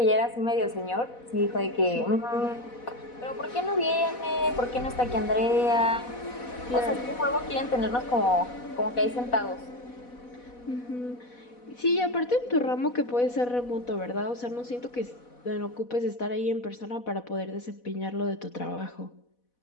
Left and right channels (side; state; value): right; late; 4.1 ms